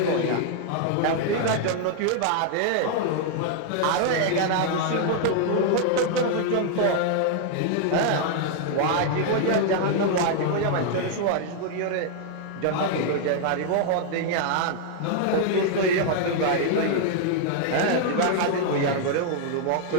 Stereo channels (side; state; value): both; different; correlation 0.00